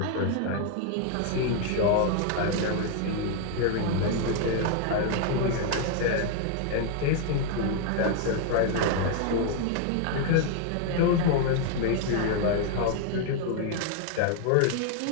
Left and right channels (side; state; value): both; different; correlation 0.00